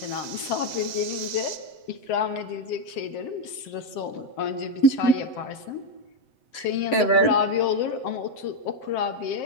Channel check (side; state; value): right; late; 7.8 ms